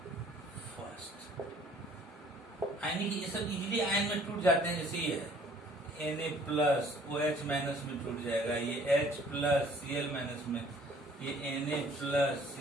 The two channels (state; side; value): normal; both; correlation 0.57